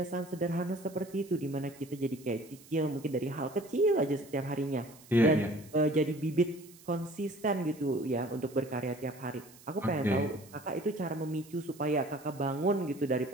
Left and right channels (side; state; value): right; noise; hiss, 22 dB below the sound